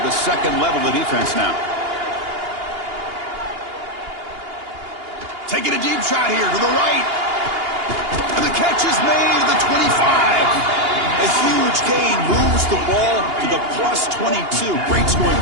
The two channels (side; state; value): left; late; 2.8 ms